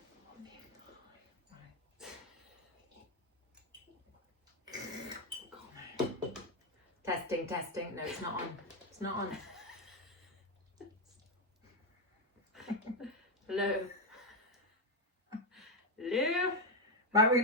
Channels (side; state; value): both; normal; correlation 0.05